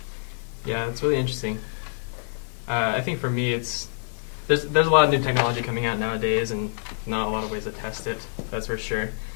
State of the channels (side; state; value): right; silent; digital silence